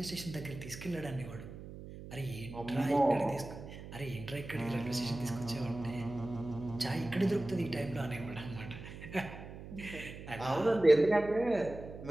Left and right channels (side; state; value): right; noise; hum, 12 dB below the sound